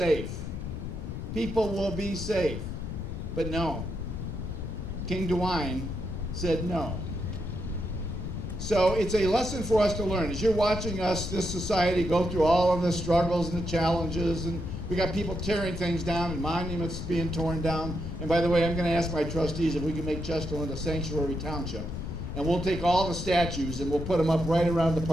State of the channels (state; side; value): noise; left; rumble, 6 dB below the sound